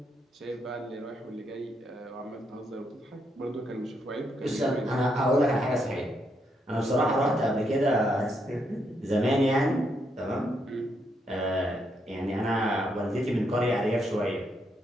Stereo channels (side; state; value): both; normal; correlation 0.77